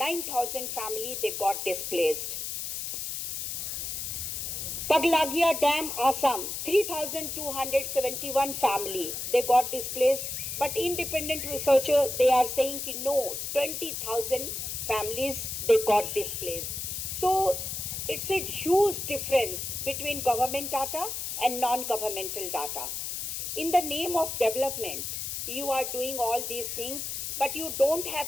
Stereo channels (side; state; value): left; noise; hiss, 4 dB below the sound